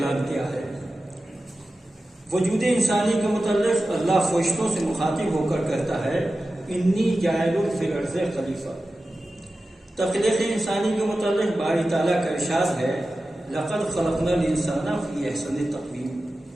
کیا ہے۔ وجود انسانی کے متعلق اللہ فرشتوں سے مخاطب ہو کر کہتا ہے انی جاعل فی الارض خلیفہ۔ تخلیق انسانی کے متعلق باری تعالیٰ کا ارشاد ہے لقد خلقنا الانسان فی احسن تقویم،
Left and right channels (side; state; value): both; normal; correlation 0.94